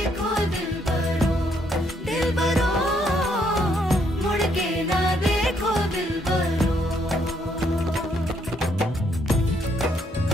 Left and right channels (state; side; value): normal; both; correlation 0.71